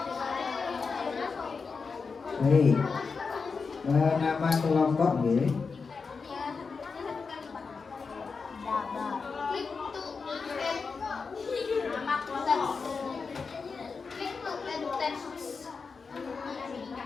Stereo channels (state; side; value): quieter; right; 4.9 dB